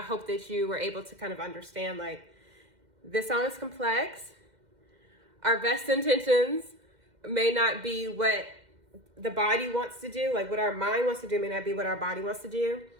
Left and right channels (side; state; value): left; late; 2.1 ms